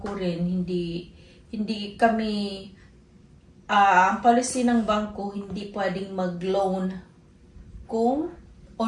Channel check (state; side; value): identical; both; correlation 1.00